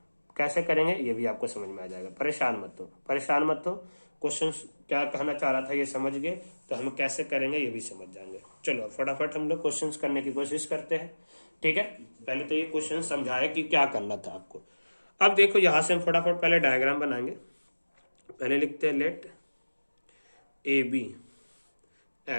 कैसे करेंगे ये भी आपको समझ में आ जाएगा। परेशान मत हो। क्वेश्चन क्या कहना चाह रहा था ये समझ गए तो हम कैसे करेंगे ये भी समझ जाएंगे। चलो फटाफट हम लोग क्वेश्चन करने की कोशिश करते हैं। ठीक है, पहले तो ये क्वेश्चन समझाए कि क्या करना था आपको। अब देखो, यहां से हम फटाफट पहले डायग्राम बनाएंगे। पहले लिखते हैं let A B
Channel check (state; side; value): inverted; both; correlation -1.00